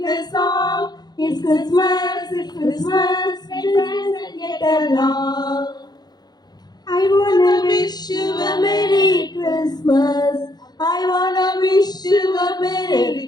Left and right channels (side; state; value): right; late; 0.20 ms